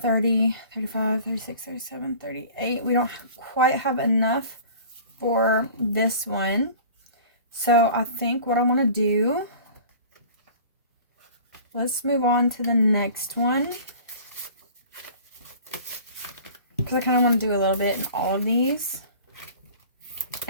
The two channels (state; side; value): inverted; both; correlation -0.43